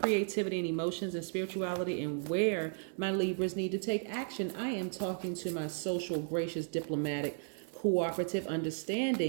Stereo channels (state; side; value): silent; left; digital silence